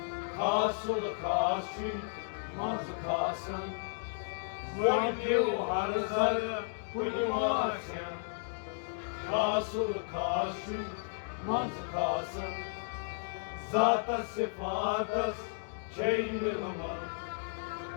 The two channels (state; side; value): silent; right; digital silence